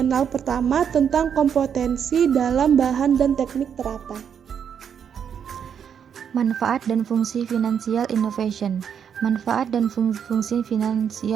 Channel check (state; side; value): quieter; left; 7.9 dB